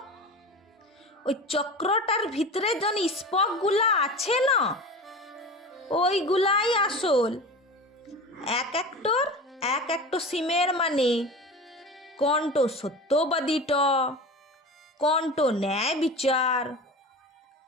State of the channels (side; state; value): both; normal; correlation 0.32